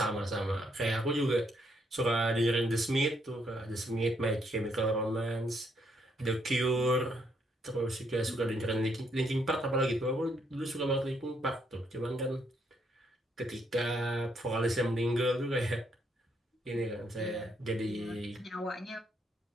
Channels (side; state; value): both; normal; correlation 0.74